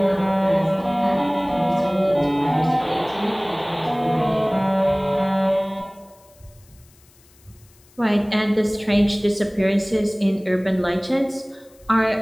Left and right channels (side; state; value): left; noise; hiss, 29 dB below the sound